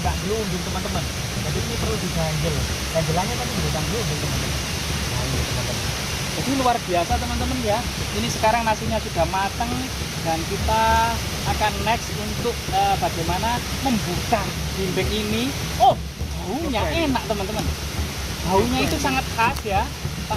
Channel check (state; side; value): identical; both; correlation 1.00